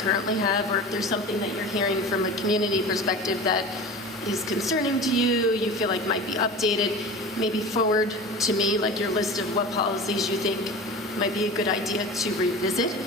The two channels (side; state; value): both; normal; correlation 0.34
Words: have, or if there's something that you're hearing from a community perspective that is concerning to you, you feel like might be updated, maybe forward to me your list of what policies you think might be a good idea to revisit.